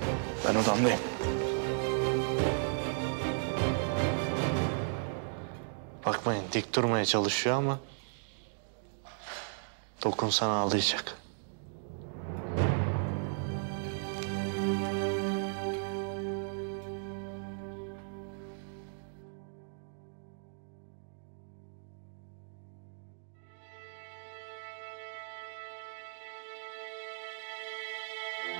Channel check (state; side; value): silent; left; digital silence